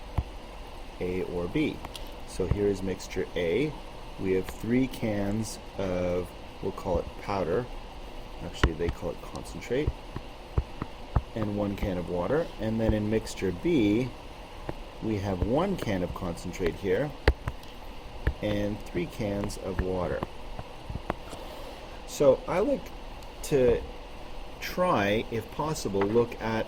A or B? So here is mixture A. We have 3 cans of, we'll call it powder. Actually, they call it concentrate. And 1 can of water. And then in mixture B, we have 1 can of concentrate here and 3 cans of water. So I like to try, if possible, look at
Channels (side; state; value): both; identical; correlation 1.00